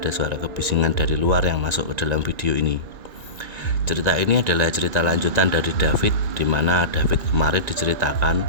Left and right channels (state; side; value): late; left; 1.9 ms